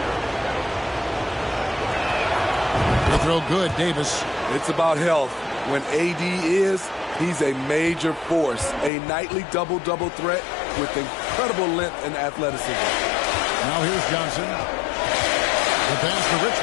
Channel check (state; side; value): drops out; right; at 8.9 s